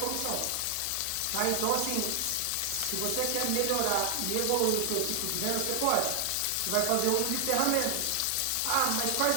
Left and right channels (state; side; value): different; both; correlation 0.00